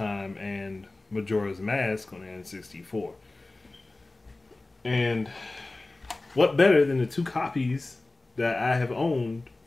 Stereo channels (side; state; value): right; quieter; 3.0 dB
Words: and Majora's Mask on the N64. And what better than the two copies that I have owned